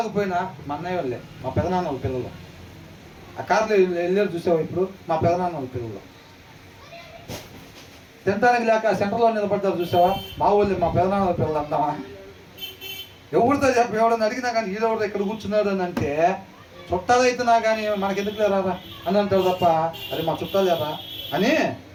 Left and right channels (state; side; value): identical; both; correlation 1.00